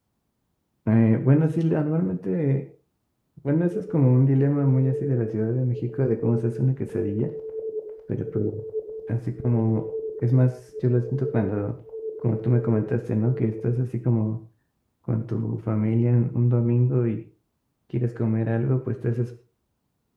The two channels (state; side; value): identical; both; correlation 1.00